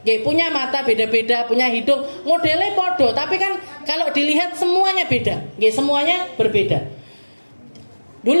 punya mata beda-beda, punya hidung modelnya podo, tapi kan kalau dilihat semuanya beda, semuanya berbeda.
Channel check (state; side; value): inverted; both; correlation -1.00